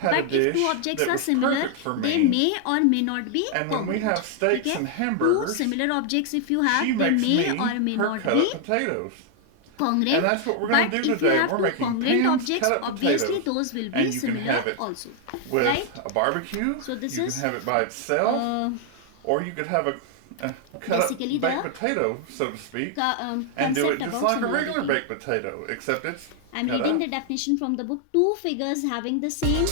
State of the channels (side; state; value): both; different; correlation 0.00